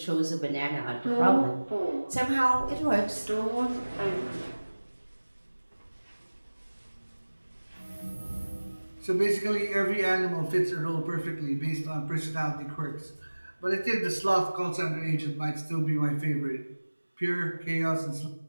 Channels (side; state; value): both; inverted; correlation -1.00